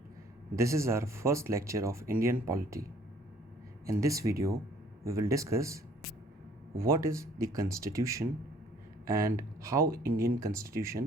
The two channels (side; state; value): both; normal; correlation 0.58